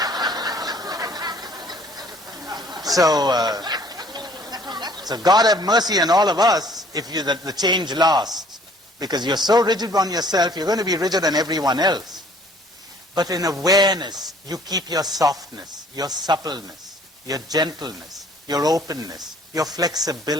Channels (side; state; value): both; normal; correlation 0.56